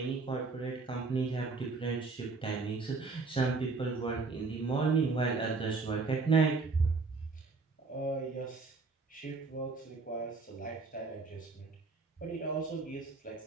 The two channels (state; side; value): quieter; left; 4.1 dB